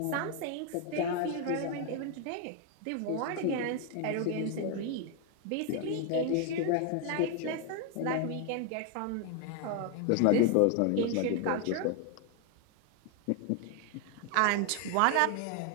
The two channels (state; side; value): different; both; correlation 0.00